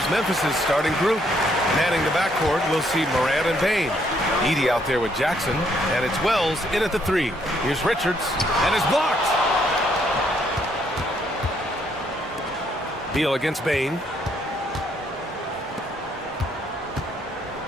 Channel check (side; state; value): both; normal; correlation 0.70